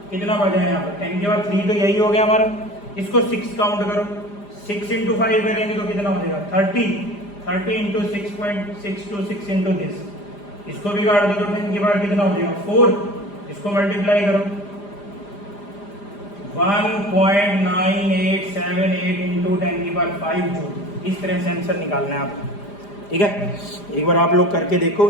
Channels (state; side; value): late; right; 4.9 ms